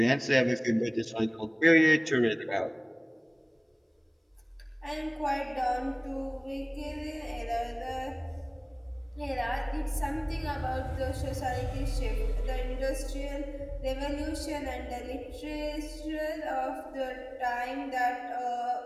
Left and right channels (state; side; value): identical; both; correlation 1.00